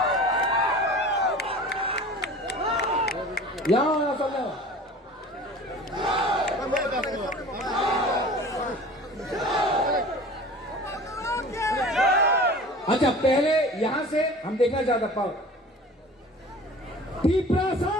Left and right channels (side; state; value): both; normal; correlation 0.41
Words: यहां अच्छा, पहले यहां से हम देखना चाहता पाओ तिपरासा,